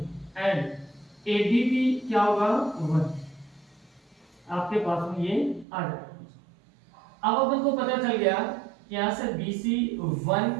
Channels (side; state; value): left; drops out; at 5.7 s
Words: एंड AB भी क्या होगा? 1। आपके पास में ये आ जाएगा। अब अपन को पता चल गया कि यहां से BC